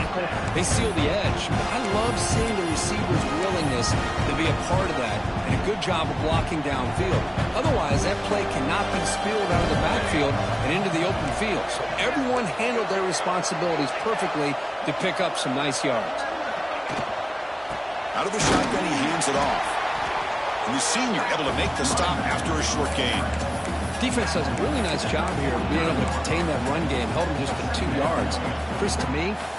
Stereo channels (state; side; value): identical; both; correlation 1.00